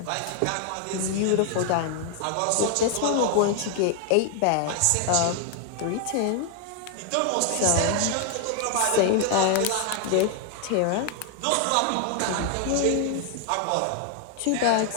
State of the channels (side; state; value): both; different; correlation 0.00